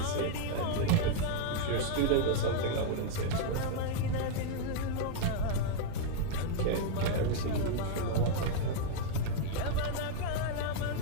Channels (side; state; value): both; different; correlation -0.01